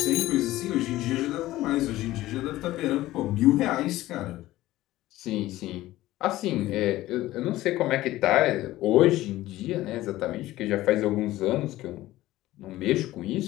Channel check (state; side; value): quieter; right; 16.2 dB